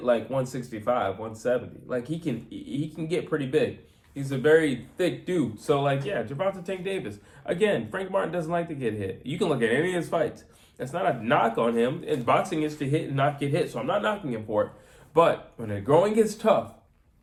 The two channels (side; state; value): both; identical; correlation 1.00